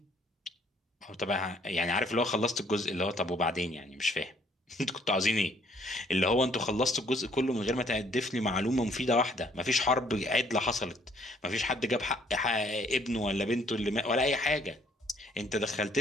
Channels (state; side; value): normal; both; correlation 0.63